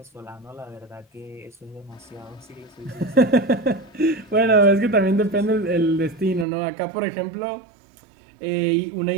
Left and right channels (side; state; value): left; drops out; at 6.5 s